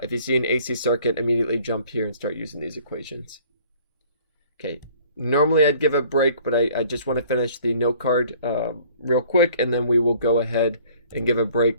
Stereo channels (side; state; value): both; inverted; correlation -0.56